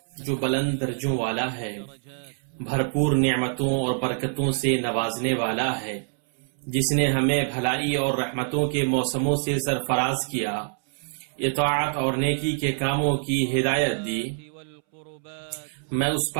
جو بلند درجوں والا ہے، بھرپور نعمتوں اور برکتوں سے نوازنے والا ہے، جس نے ہمیں بھلائی اور رحمتوں کے موسموں سے سرفراز کیا، اطاعت اور نیکی کے کاموں کی ہدایت دی۔ میں اس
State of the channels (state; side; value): silent; left; 61 dB below the other